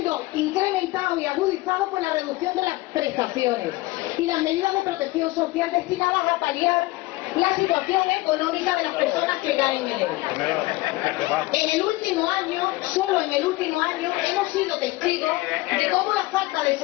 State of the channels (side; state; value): right; quieter; 20.2 dB